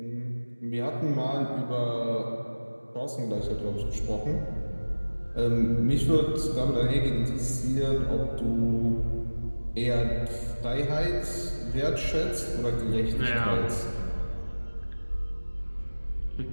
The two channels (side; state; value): both; inverted; correlation -1.00